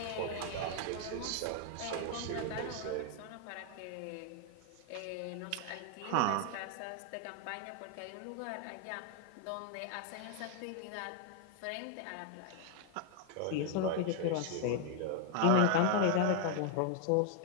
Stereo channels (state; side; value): different; both; correlation 0.00